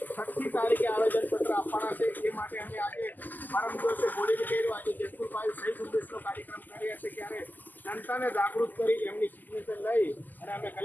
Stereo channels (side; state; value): right; late; 0.085 ms